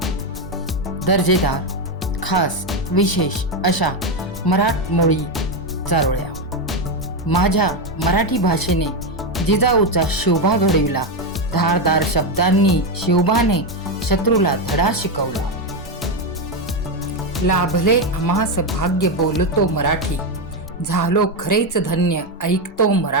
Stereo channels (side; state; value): both; normal; correlation 0.08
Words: दर्जेदार, खास, विशेष अशा मराठमोळी चारोळ्या. माझ्या मराठी भाषेने जिजाऊचा शिवबा घडविला, धारदार शब्दांनी शिवबाने शत्रूला धडा शिकवला. लाभले आम्हास भाग्य बोलतो मराठी, झालो खरेच धन्य ऐकतो